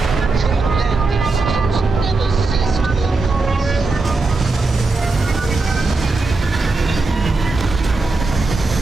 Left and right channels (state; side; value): quieter; left; 3.6 dB